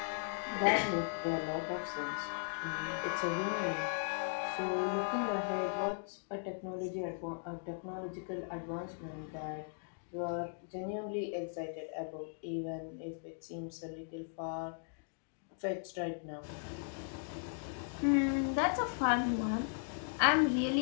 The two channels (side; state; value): right; silent; digital silence